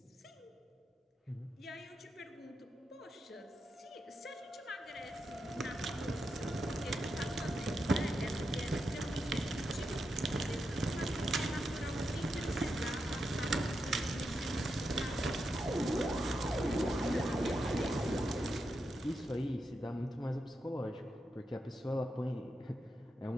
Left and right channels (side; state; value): both; normal; correlation 0.86